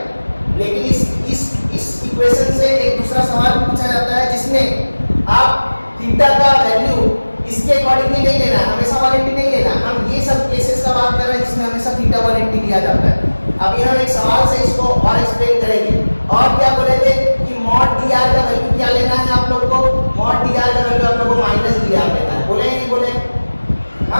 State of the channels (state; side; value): inverted; both; correlation -1.00